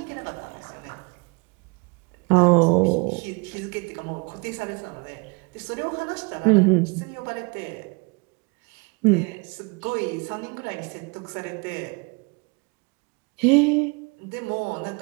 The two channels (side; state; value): left; quieter; 30.6 dB